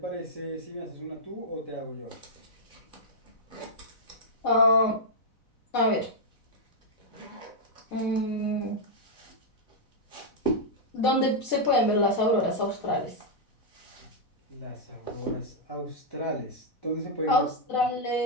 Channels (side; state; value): right; late; 4.0 ms